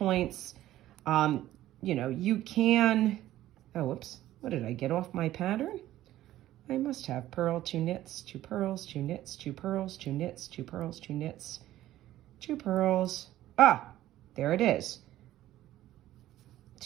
You know, you can, oh, whoops, what did I get off my pattern? I must have purl, 2 knits, 2 purls, 2 knits, 2 purls, 2 knits, 2 purls, 2 knits, 2 purls. Ah, there it is.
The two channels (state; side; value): quieter; left; 14.2 dB